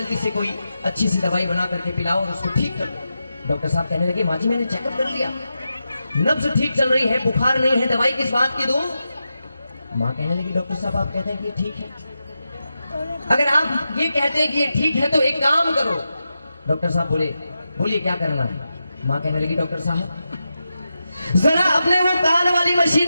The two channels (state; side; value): inverted; both; correlation -0.89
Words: से कोई अच्छी सी दवाई बना करके पिलाओ और उसको ठीक करो। डॉक्टर साहब कहने लगे, माँ जी मैंने चेकअप कर लिया, नब्ज ठीक चल रही है, बुखार नहीं है, दवाई किस बात की दूं? माँ कहने लगी, डॉक्टर साहब आप कहते हैं कि ये ठीक है, अगर आप ये कहते हैं कि ये ठीक है तो एक काम करो। डॉक्टर साहब बोले, बोलिए क्या करना है? माँ कहने लगी, डॉक्टर साहब जरा अपने वो कान वाली